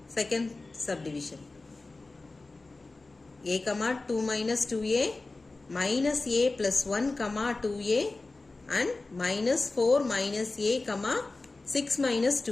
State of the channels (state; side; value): quieter; right; 3.4 dB